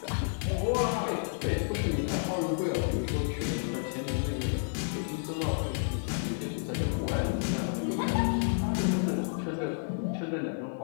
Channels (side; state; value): right; silent; 57 dB below the other